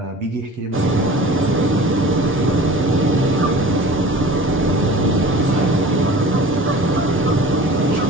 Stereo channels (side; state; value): both; normal; correlation 0.41